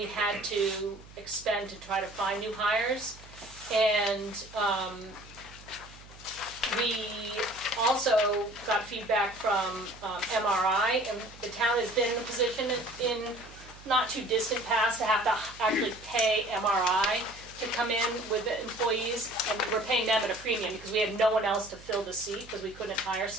had to expend to try to find new hires, and we also got feedback from MRI, and the town has been in a position in not too distant past to have to actually pay MRI to come in with the employees, and we're paying them at a premium because we had no one else to fill the seat because we couldn't hire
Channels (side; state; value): right; noise; hum, 20 dB below the sound